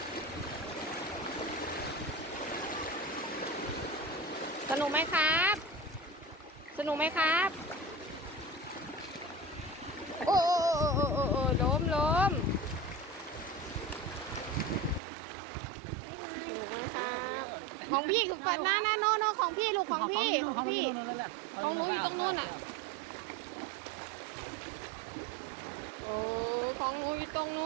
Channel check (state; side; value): drops out; left; at 15.0 s